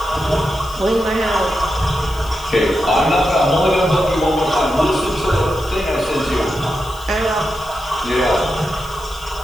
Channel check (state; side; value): noise; left; hiss, 20 dB below the sound